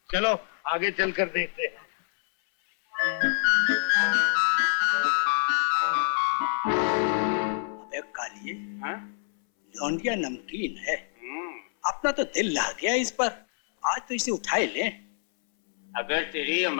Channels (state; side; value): silent; right; 60 dB below the other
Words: चलो आगे चलकर देखते हैं। अबे कालिए, हाँ? लौंडिया नमकीन है। अपना तो दिल ला गया इस पर। आज तो इसे उठा ही ले। अगर तेरी ये